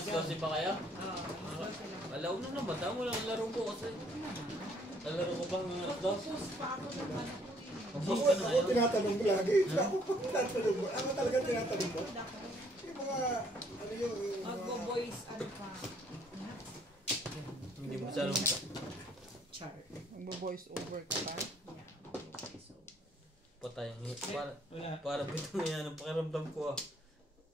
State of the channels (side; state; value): both; normal; correlation 0.64